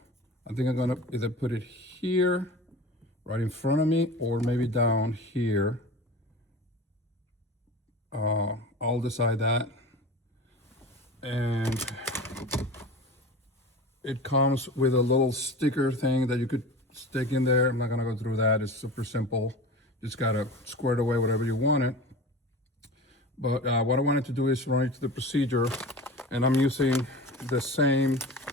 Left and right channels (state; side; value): normal; both; correlation 0.34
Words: I think I'm gonna either put it here, right in front of me, or maybe down here. I'll decide that. And it comes with a little sticker thing that you could stick in there. I'm not gonna go through that. It's super simple. Just gotta square it away whatever you want it. But what I wanted to do is run it to the procedure, and I'm using the same